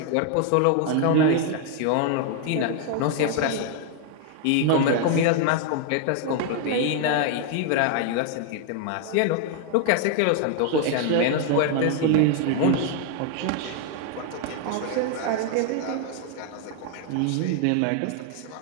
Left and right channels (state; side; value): different; both; correlation 0.00